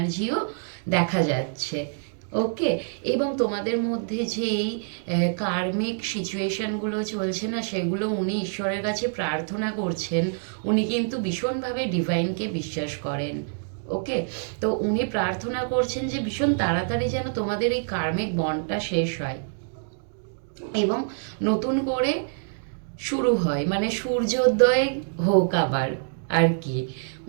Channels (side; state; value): left; silent; digital silence